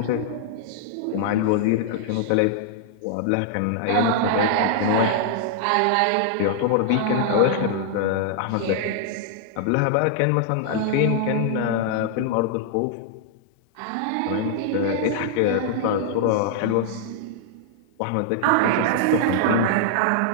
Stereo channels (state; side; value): different; both; correlation -0.01